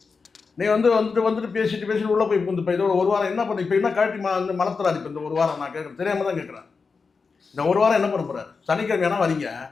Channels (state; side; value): quieter; right; 4.8 dB